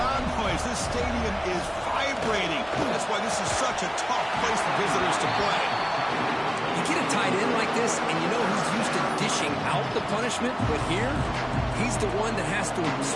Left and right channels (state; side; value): identical; both; correlation 1.00